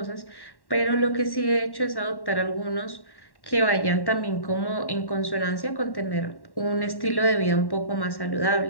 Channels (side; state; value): right; late; 1.1 ms